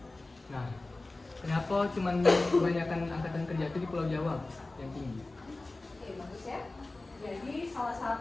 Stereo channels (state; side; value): quieter; right; 3.1 dB